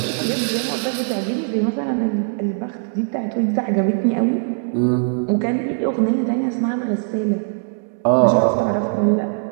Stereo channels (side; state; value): left; silent; 65 dB below the other